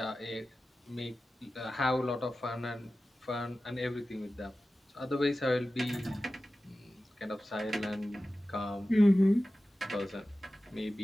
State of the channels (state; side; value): normal; both; correlation 0.95